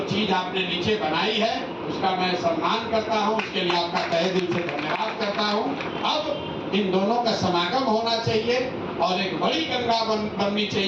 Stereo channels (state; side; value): identical; both; correlation 1.00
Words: चीज आपने नीचे बनाई है, उसका मैं सम्मान करता हूं, उसके लिए आपका तहे दिल से धन्यवाद करता हूं। अब इन दोनों का समागम होना चाहिए और एक बड़ी गंगा बननी